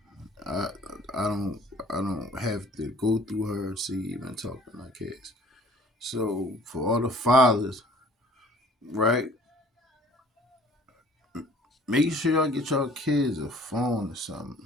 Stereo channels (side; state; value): both; normal; correlation 0.53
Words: I I don't I don't have to go through her to even talk to my kids. So for all the fathers, right? Make sure y'all get y'all kids a phone or something,